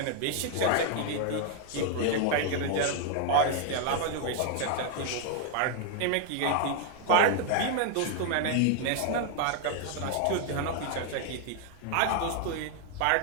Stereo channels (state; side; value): different; both; correlation 0.00